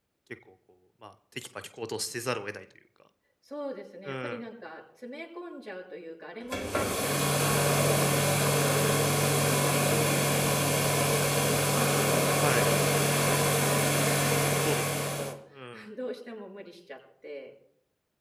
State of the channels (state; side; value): identical; both; correlation 1.00